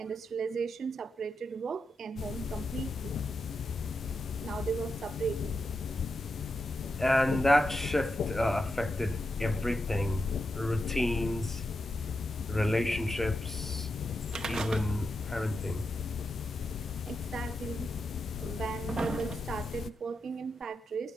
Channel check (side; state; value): both; normal; correlation 0.86